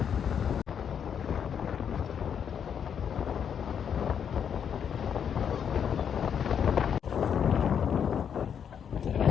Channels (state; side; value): quieter; right; 7.9 dB